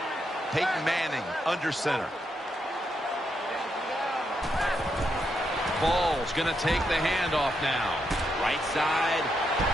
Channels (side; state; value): both; normal; correlation 0.81